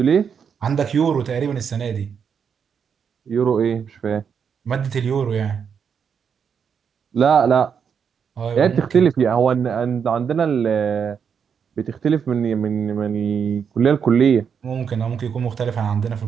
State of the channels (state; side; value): quieter; left; 7.0 dB